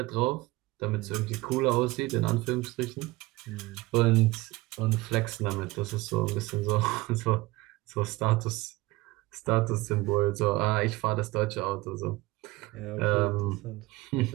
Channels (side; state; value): left; quieter; 20.8 dB